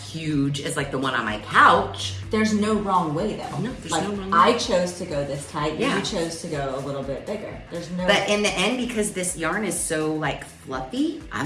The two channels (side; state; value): both; identical; correlation 1.00